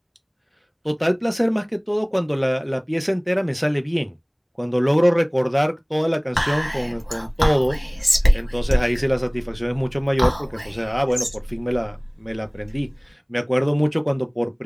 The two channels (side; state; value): both; identical; correlation 1.00